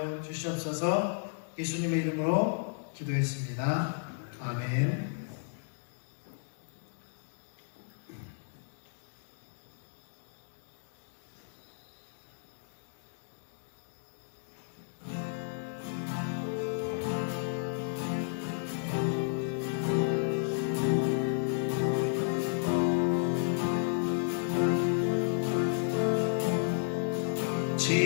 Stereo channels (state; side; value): silent; right; digital silence